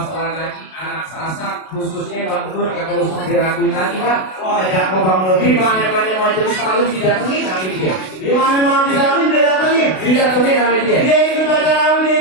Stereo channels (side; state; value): right; late; 32 ms